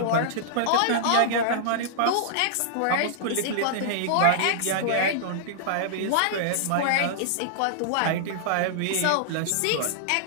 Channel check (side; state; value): both; different; correlation -0.01